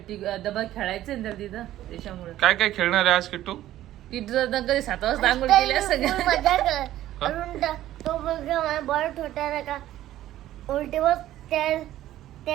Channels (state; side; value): quieter; left; 13.6 dB